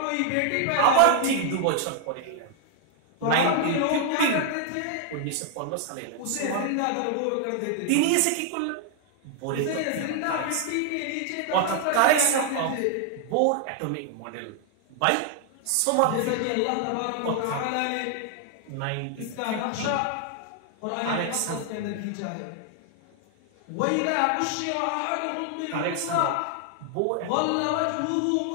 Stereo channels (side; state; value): both; different; correlation 0.00